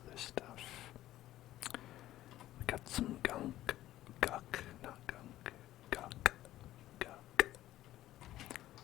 other stuff? We got some gunk. Guck, not gunk. Guck. Guck.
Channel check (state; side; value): quieter; right; 14.4 dB